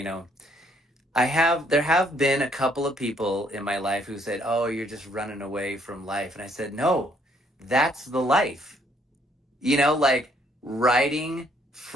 There have been a couple of people in my life who said, "Oh, you're just running away from life," and I said, "No, that's the life." Like riding,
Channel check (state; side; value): normal; both; correlation 0.67